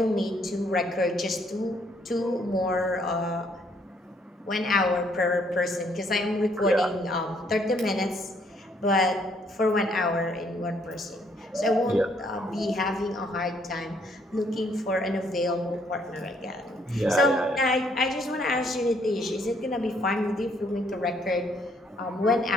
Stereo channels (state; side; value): normal; both; correlation 0.68